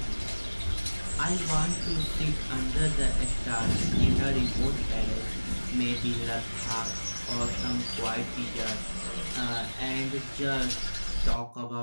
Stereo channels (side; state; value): both; inverted; correlation -1.00